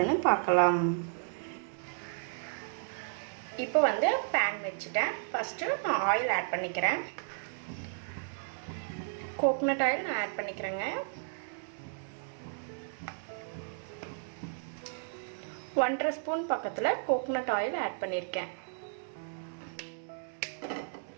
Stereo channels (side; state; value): left; silent; digital silence